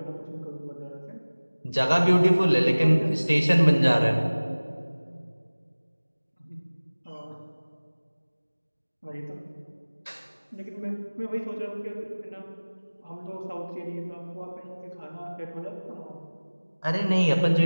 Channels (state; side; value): inverted; both; correlation -1.00